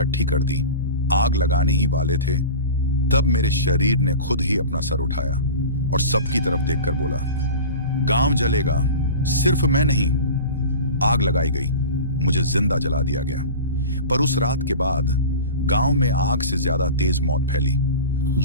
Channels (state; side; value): inverted; both; correlation -0.33